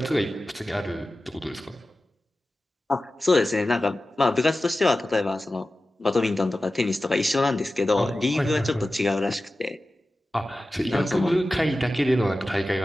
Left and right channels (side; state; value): both; normal; correlation 0.95